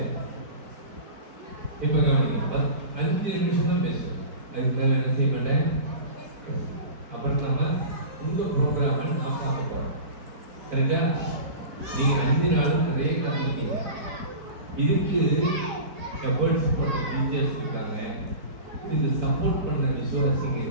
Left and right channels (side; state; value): left; late; 4.5 ms